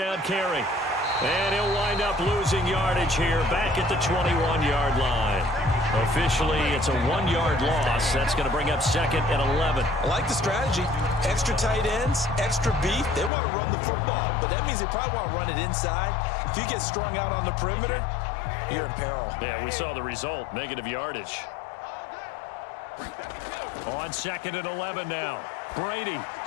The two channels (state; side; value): drops out; right; at 13.3 s